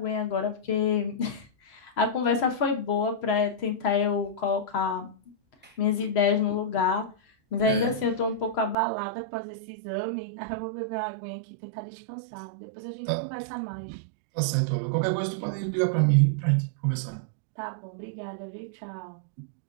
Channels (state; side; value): drops out; left; at 8.8 s